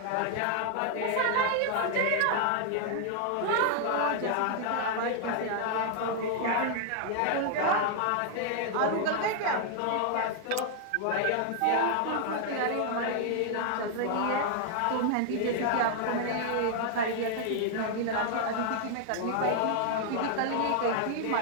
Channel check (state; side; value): different; both; correlation 0.00